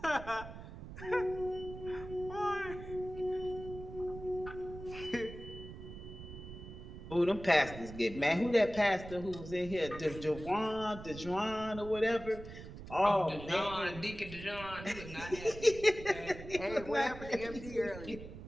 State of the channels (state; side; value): noise; right; rumble, 12 dB below the sound